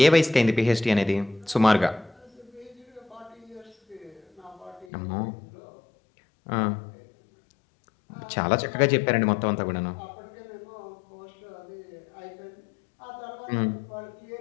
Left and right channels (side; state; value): right; drops out; at 4.9 s